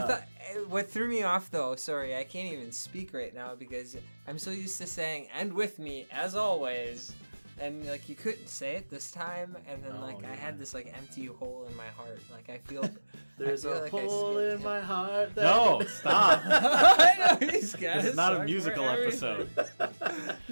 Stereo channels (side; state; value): both; inverted; correlation -1.00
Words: thought what threw me off though. Sorry, I can't even speak right now because I'm so used to saying "and with me as always," and like you couldn't say it this time, and then I had this like empty hole in my heart. Like I feel there's a hole in my heart. No, stop. I know he's got It's not a musical episode.